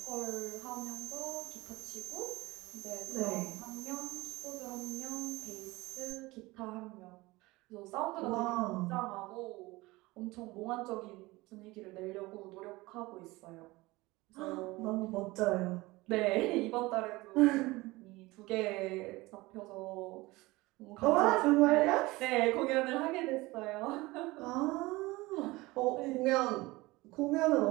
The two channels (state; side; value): quieter; left; 21.1 dB